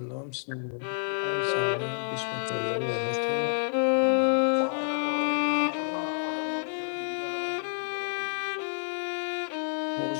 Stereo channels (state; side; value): silent; right; digital silence